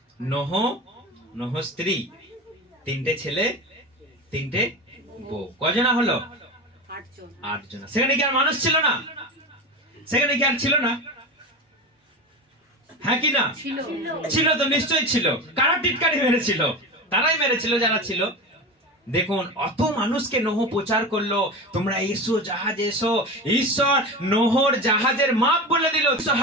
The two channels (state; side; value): normal; both; correlation 0.26